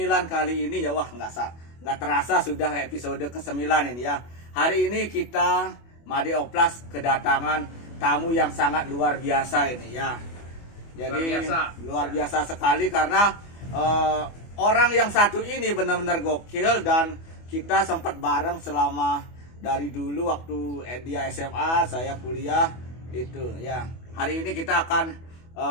kali ini ya, wah nggak terasa sudah episode ke-9 ini ya. Hari ini kita Made Oplas kedatangan tamu yang sangat luar biasa ini ya. Jadi luar biasa sekali karena orang yang satu ini benar-benar gokil dan kita sempat bareng selama dari dulu waktu dia SMA, saya kuliah itu ya. Hari ini kita akan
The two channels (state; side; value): late; right; 24 ms